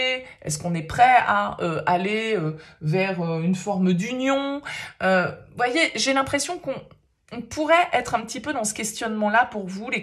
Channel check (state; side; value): identical; both; correlation 1.00